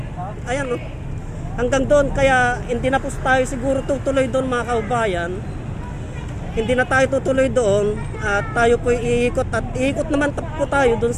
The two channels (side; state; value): both; identical; correlation 1.00